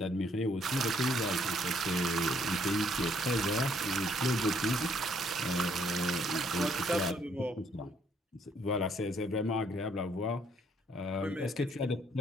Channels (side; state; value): both; normal; correlation 0.67